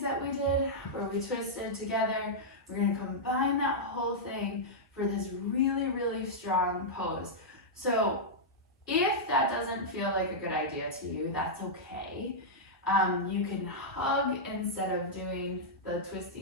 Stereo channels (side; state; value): both; normal; correlation -0.09